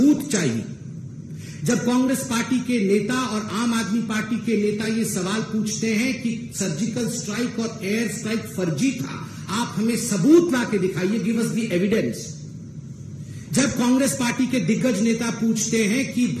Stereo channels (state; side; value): identical; both; correlation 1.00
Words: चाहिए, जब कांग्रेस पार्टी के नेता और आम आदमी पार्टी के नेता ये सवाल पूछते हैं कि सर्जिकल स्ट्राइक और एयर स्ट्राइक फर्जी था, आप हमें सबूत ला के दिखाइए, गिव अस द एविडेंस। जब कांग्रेस पार्टी के दिग्गज नेता पूछते हैं कि